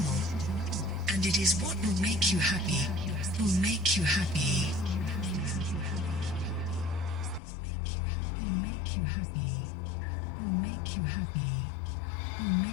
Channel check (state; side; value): drops out; right; at 7.4 s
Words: and it is what will make you happy, will make you happy. Will make you happy, will make you happy, will